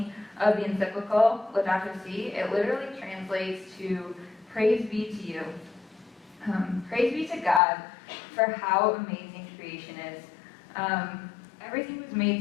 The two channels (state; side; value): drops out; right; at 7.6 s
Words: of the encyclical, Laudato Si. It literally translates to praise be to you. Praise be to God for how amazing creation is. Everything was